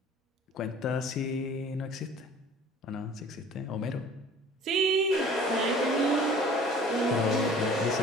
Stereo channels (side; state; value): both; normal; correlation 0.48